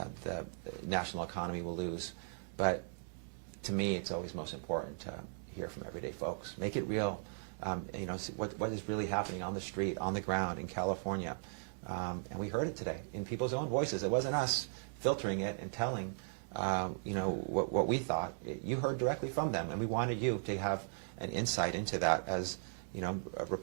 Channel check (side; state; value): left; silent; digital silence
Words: national economy will lose. But to me, it's always most important to hear from everyday folks. Make it real. See what is really happening on the street, on the ground in California. And we heard it today in people's own voices. It wasn't us filtering it and telling, what we thought. You heard directly from them, and we wanted you to have an insight into that. As